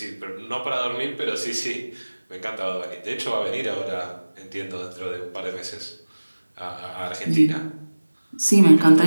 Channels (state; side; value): inverted; both; correlation -1.00